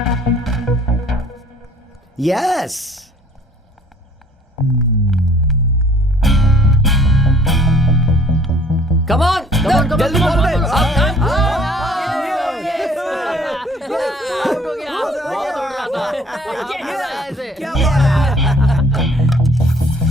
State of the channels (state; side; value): normal; both; correlation 0.55